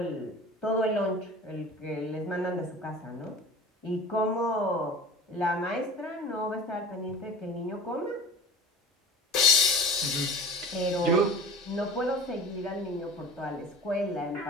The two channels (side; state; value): both; normal; correlation 0.39